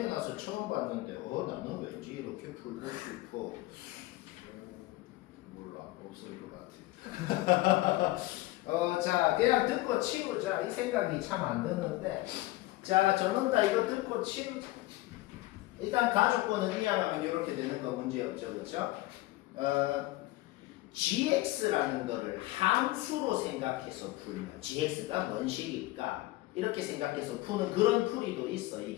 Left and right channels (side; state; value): right; quieter; 18.5 dB